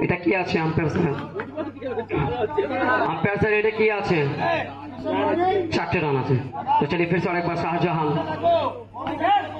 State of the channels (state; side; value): identical; both; correlation 1.00